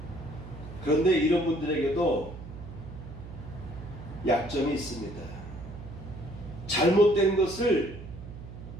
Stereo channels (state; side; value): noise; right; hum, 13 dB below the sound